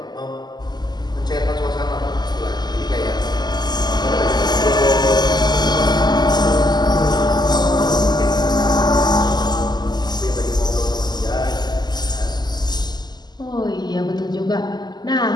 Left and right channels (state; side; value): late; right; 0.21 ms